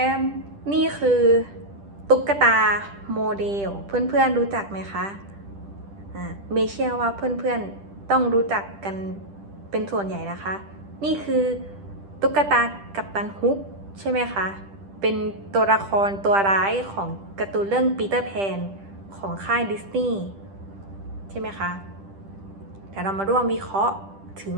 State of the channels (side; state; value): left; late; 10 ms